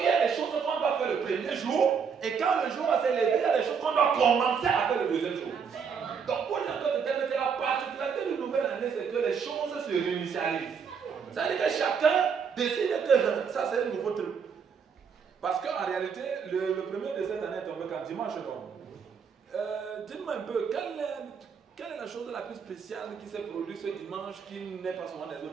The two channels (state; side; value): quieter; left; 6.4 dB